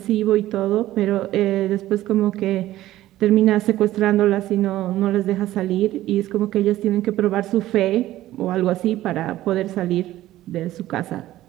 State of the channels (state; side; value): quieter; left; 14.9 dB